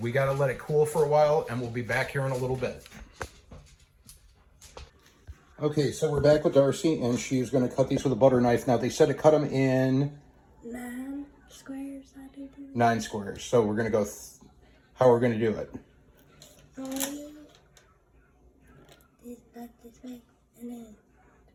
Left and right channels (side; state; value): both; identical; correlation 1.00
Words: got to let it cool for a while, and we'll be back here in a little bit. Okay, so we're back with Darcy, and she's going to cut these with a butter knife. Now, they said to cut them in 9 squares, I do. 9 squares. So we're going to go, how are we going to do it? This way, and then